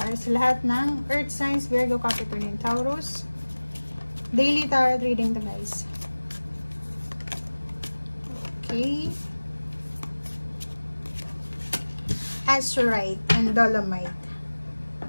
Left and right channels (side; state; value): both; inverted; correlation -1.00